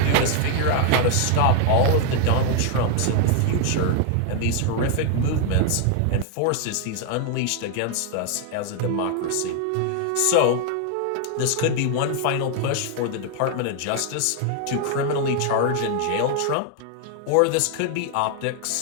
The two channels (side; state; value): both; different; correlation 0.00